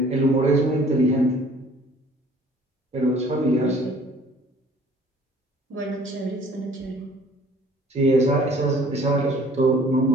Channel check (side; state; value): both; normal; correlation 0.53